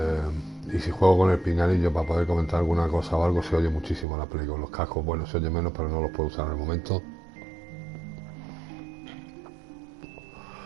y si juego con el pinganillo para poder comentar alguna cosa o algo, se oye muchísimo la play. Con los cascos, bueno, se oye menos, pero no los puedo usar en el momento.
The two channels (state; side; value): drops out; left; at 4.0 s